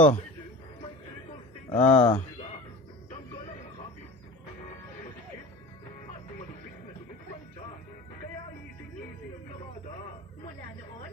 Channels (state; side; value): normal; both; correlation 0.37